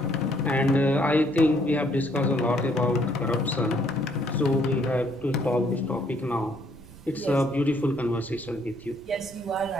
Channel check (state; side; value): noise; right; rumble, 20 dB below the sound